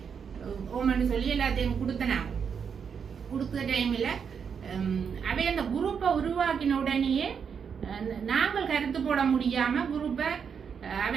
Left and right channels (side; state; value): left; quieter; 6.8 dB